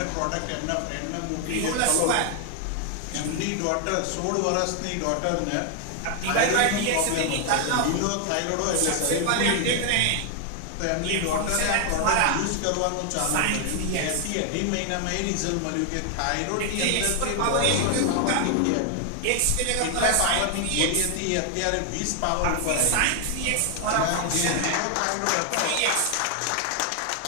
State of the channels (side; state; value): both; different; correlation 0.00